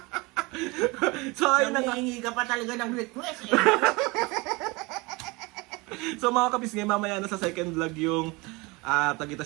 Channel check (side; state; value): left; quieter; 25.2 dB